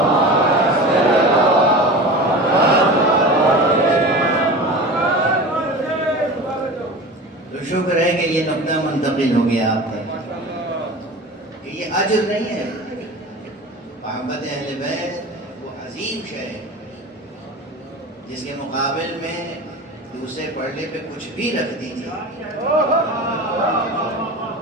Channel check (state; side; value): normal; both; correlation 0.33